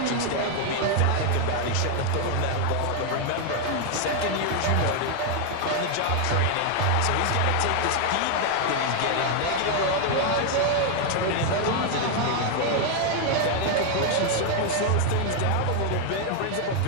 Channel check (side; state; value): both; different; correlation 0.00